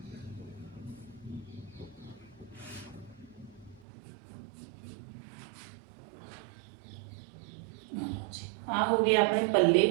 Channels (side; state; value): left; drops out; at 3.8 s